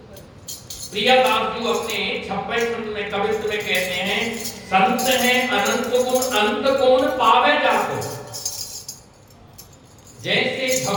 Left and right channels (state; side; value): identical; both; correlation 1.00